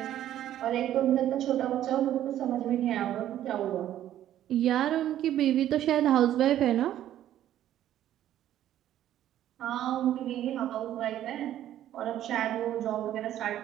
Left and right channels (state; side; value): quieter; left; 12.0 dB